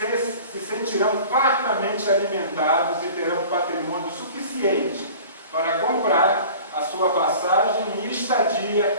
se sentirão fartamente alimentados e terão patrimônio suficiente para comprar a sua passagem e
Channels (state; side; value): inverted; both; correlation -0.43